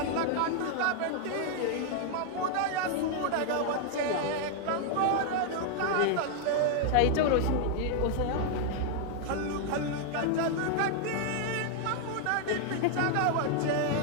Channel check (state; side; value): different; both; correlation 0.00